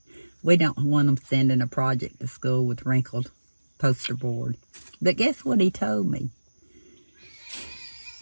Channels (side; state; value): both; inverted; correlation -1.00